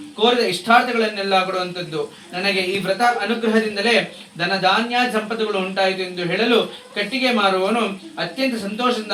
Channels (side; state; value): both; identical; correlation 1.00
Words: ಕೋರಿದ ಇಷ್ಟಾರ್ಥಗಳನ್ನೆಲ್ಲ ಕೊಡುವಂಥದ್ದು. ನನಗೆ ಈ ವ್ರತ ಅನುಗ್ರಹದಿಂದಲೇ ಧನ ಧಾನ್ಯ ಸಂಪತ್ತುಗಳು ಉಂಟಾಯಿತು ಎಂದು ಹೇಳಲು ಕಟ್ಟಿಗೆ ಮಾರುವವನು ಅತ್ಯಂತ ಸಂತೋಷದಿಂದ